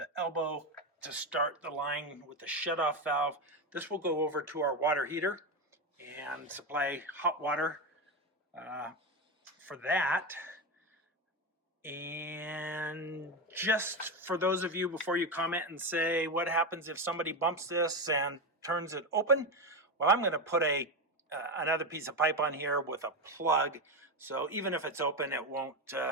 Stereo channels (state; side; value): normal; both; correlation 0.14